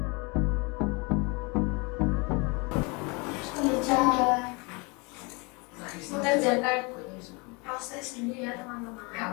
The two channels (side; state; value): right; quieter; 29.1 dB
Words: Mengerjakan proses dulu ya teman-teman.